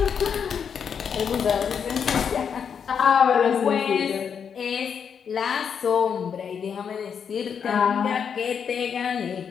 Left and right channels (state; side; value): quieter; right; 7.1 dB